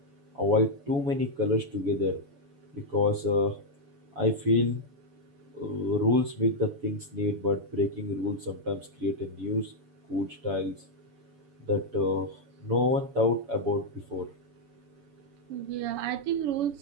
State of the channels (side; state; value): left; late; 7.0 ms